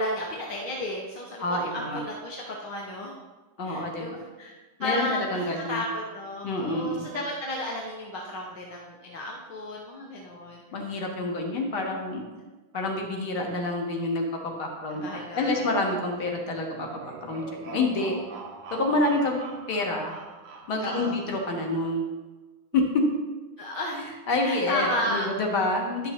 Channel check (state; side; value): late; left; 9.8 ms